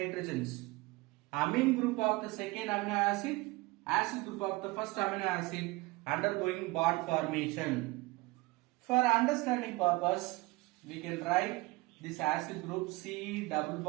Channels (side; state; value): left; quieter; 22.4 dB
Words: Amine group of the second amino acid, acid group of the first amino acid undergoing bond formation. For understanding purpose, we can write this acid group C double